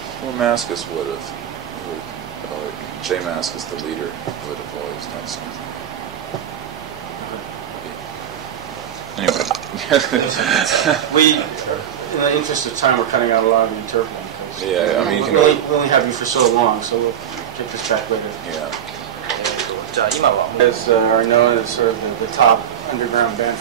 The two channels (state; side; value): quieter; left; 9.4 dB